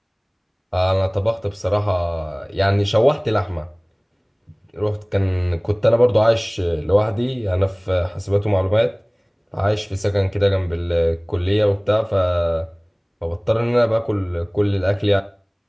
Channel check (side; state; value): both; identical; correlation 1.00